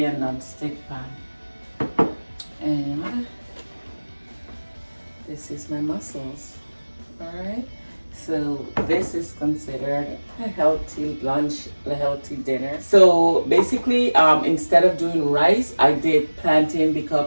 a non-stick pan. And this is my mussels. All right, so this is considered a healthy lunch, a healthy dinner. So basically, instead of doing rice, I did plantain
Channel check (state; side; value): inverted; both; correlation -1.00